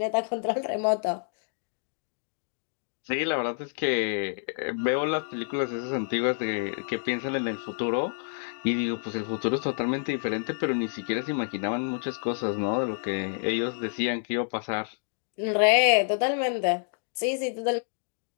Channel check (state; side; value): silent; right; digital silence